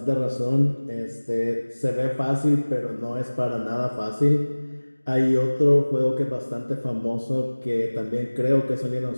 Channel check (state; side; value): inverted; both; correlation -1.00